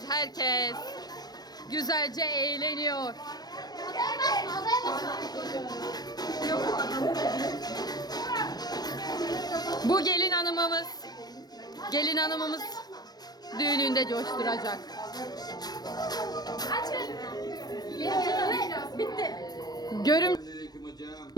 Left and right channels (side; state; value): right; late; 0.19 ms